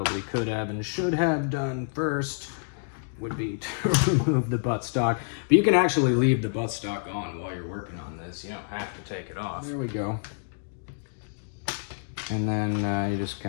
could have and should have done first would be to remove the buttstock. But you can actually leave the buttstock on while you're working on this. You don't have to take it off. There we go. And then you just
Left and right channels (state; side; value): silent; right; digital silence